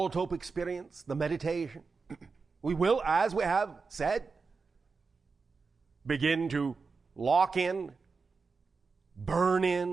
experience, the meditation, we will, as we have said, begin to lock in, burn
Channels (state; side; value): quieter; left; 4.6 dB